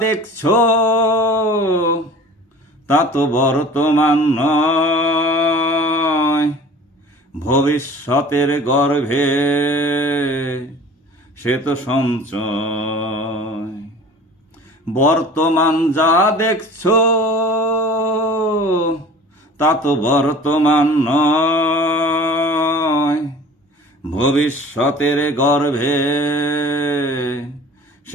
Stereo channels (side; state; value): both; normal; correlation 0.43